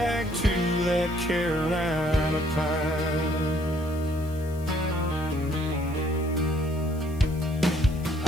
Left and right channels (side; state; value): left; noise; hiss, 22 dB below the sound